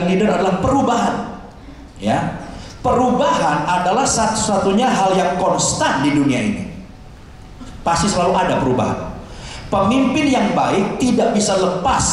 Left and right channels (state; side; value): identical; both; correlation 1.00